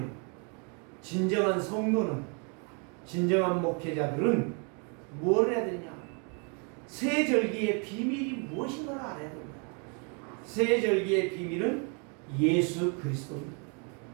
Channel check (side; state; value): left; quieter; 36.8 dB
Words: 진정한 성도는, 진정한 목회자들은 뭘 해야 되냐? 세절기의 비밀이 무엇인가를 알아야 됩니다. 세절기의 비밀은 예수 그리스도입니다.